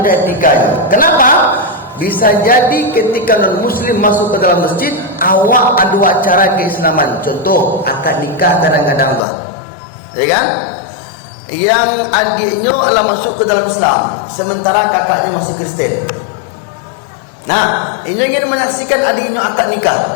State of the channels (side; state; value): right; drops out; at 9.2 s